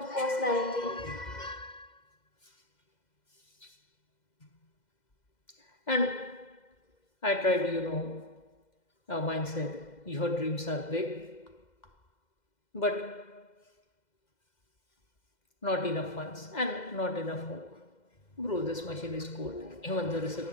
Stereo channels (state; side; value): late; right; 2.0 ms